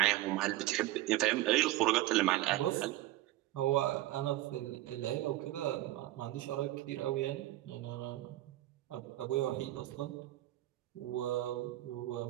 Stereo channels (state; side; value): quieter; left; 16.2 dB